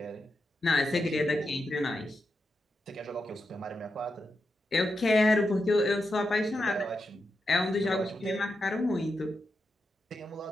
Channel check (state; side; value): normal; both; correlation 0.87